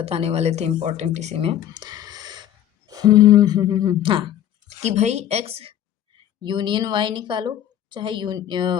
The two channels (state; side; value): quieter; right; 11.2 dB